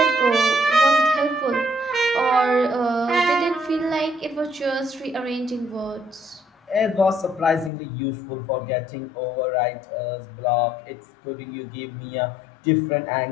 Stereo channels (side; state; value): right; drops out; at 7.7 s